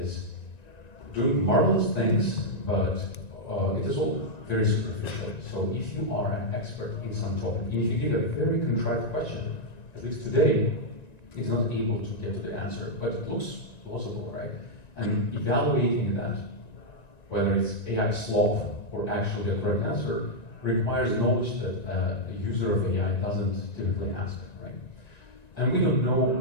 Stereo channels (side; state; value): right; late; 1.9 ms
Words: doing marvelous things, but it is all very superficial. So if you are an expert in some topic, and if you give a very contrived question, at least today, it's not able to get to the answer, but it looks plausible, right? And evaluating that, whether it's AI slop or actually a correct answer, requires knowledge that a user of AI doesn't typically ask, right? And we don't